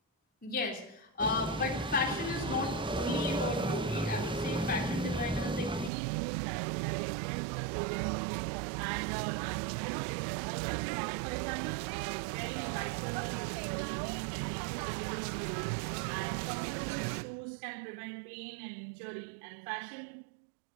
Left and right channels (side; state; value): left; drops out; at 5.9 s